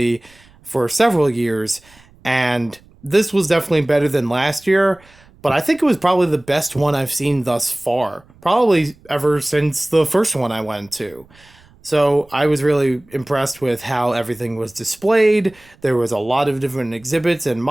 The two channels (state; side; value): noise; right; rumble, 28 dB below the sound